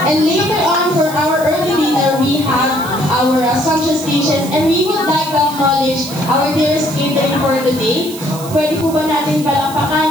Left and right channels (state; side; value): noise; right; hiss, 14 dB below the sound